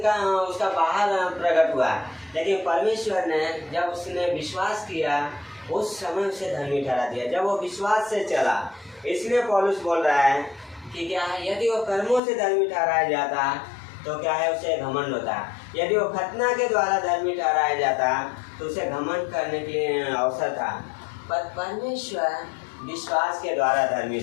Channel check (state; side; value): drops out; right; at 12.2 s